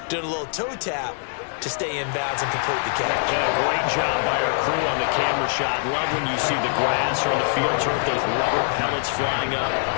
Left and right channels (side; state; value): right; silent; digital silence